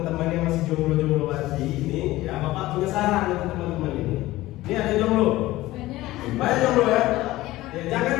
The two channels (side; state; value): right; quieter; 17.3 dB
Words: yang masih jomblo-jomblo lagi ini, ya Bapak punya saran untuk teman-teman ini. Ini ada jomblo. Banyak jomblo ya. Ya